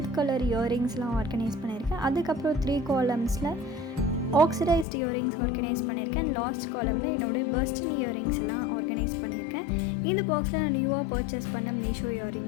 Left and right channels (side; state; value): right; drops out; at 4.9 s